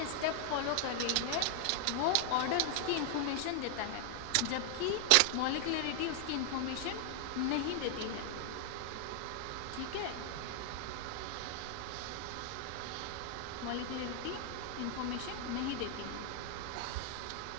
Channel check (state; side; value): different; both; correlation 0.00